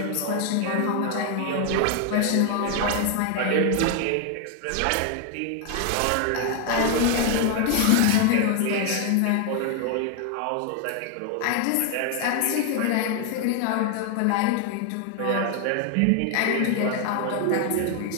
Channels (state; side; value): different; both; correlation 0.00